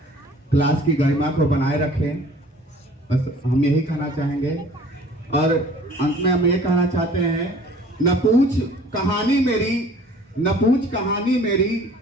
क्लास की गरिमा को बनाए रखें, बस हम यही कहना चाहेंगे। और अंत में हम ये कहना चाहते हैं, न पूछ कहानी मेरी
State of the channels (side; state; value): both; normal; correlation 0.50